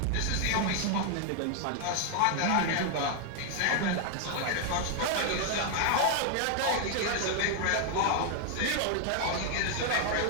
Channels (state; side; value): different; both; correlation 0.00